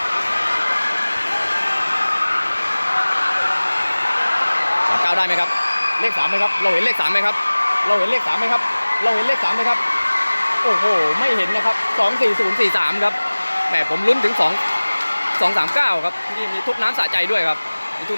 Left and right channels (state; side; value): inverted; both; correlation -1.00